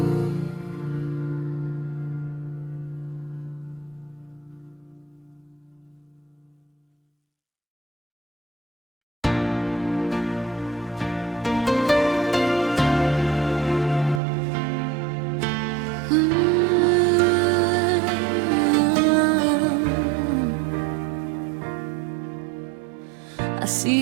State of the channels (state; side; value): drops out; left; at 14.2 s